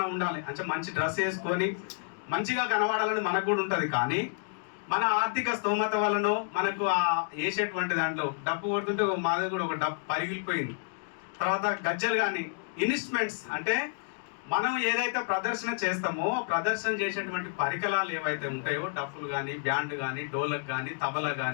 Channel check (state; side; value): silent; right; digital silence